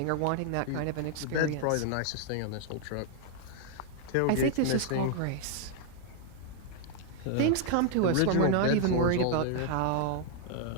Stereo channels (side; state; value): both; different; correlation 0.00